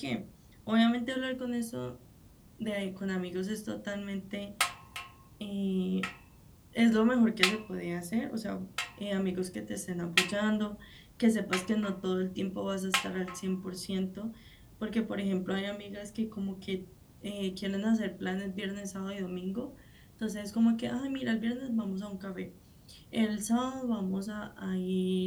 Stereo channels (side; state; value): both; identical; correlation 1.00